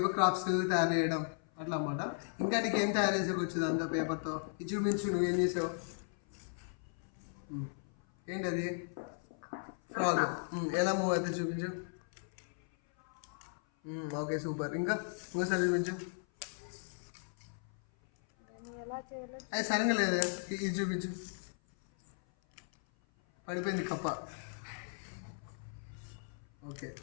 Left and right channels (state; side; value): silent; right; 53 dB below the other